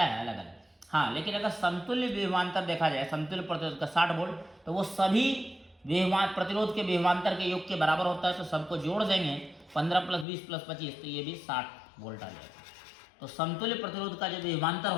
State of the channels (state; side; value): drops out; right; at 10.2 s